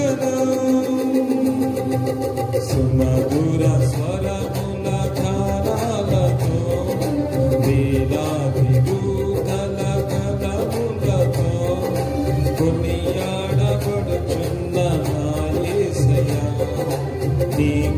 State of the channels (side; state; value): both; identical; correlation 1.00